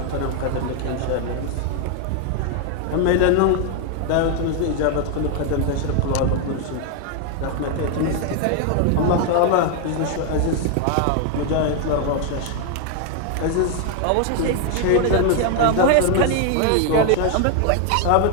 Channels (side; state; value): both; different; correlation 0.00